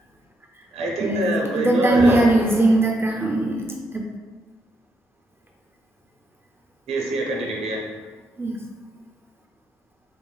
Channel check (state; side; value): normal; both; correlation 0.79